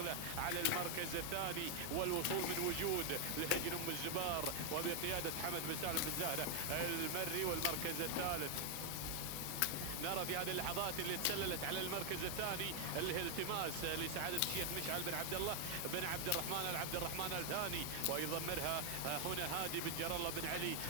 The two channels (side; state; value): both; different; correlation 0.00